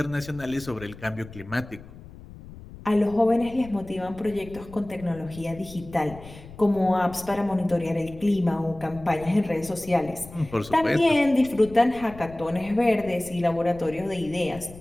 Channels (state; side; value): noise; left; rumble, 17 dB below the sound